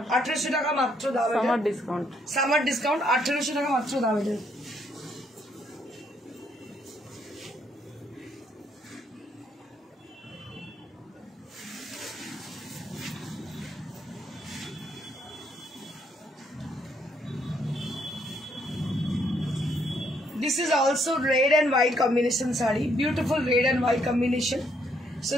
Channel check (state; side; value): normal; both; correlation 0.71